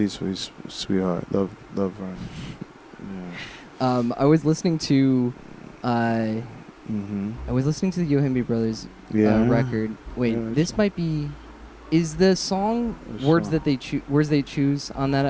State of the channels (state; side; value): identical; both; correlation 1.00